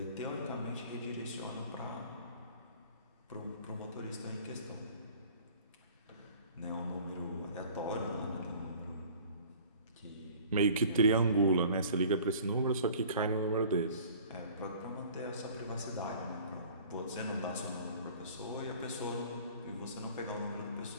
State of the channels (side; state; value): both; inverted; correlation -0.49